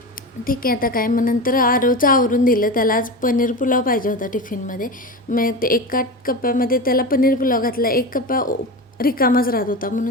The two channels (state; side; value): normal; both; correlation 0.24